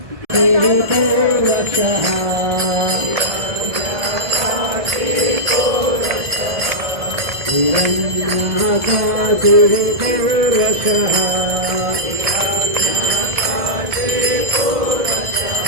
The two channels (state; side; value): late; left; 1.7 ms